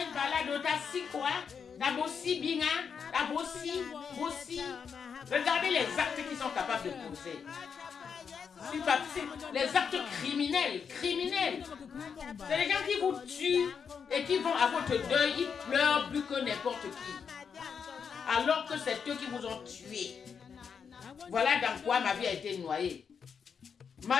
par-là, d'autassi quoi? D'abossi binga, d'abossi, bossi. Regardez les actes qu'ils sont capables de poser. Les actes criminels. C'est les gens qui vous tuent et qui vont à votre deuil, ils pleurent plus que n'importe qui. Alors que c'est eux qui vous ont tué. Voilà dans quoi ma vie a été noyée.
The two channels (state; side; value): quieter; right; 6.5 dB